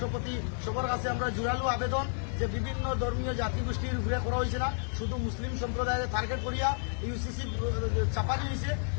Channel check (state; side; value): silent; right; 57 dB below the other